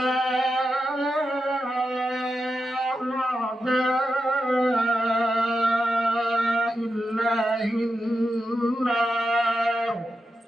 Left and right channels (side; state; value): both; normal; correlation 0.88